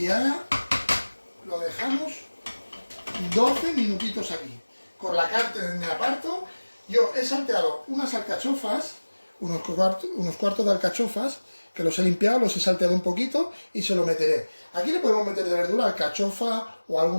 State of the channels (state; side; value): inverted; both; correlation -1.00